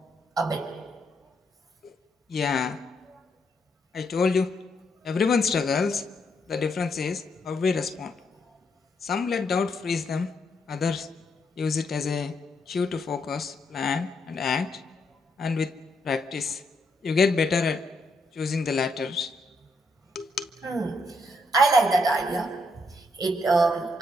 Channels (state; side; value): normal; both; correlation 0.77